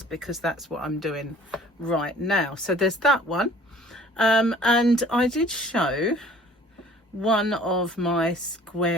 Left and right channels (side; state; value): both; normal; correlation 0.52